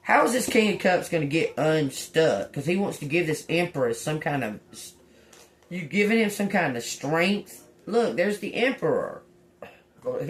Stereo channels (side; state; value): both; identical; correlation 1.00